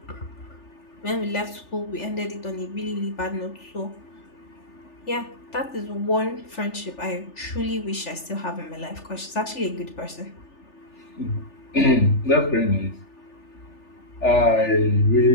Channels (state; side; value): late; right; 3.4 ms